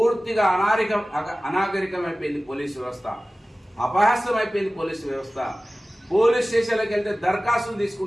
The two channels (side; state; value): both; normal; correlation 0.97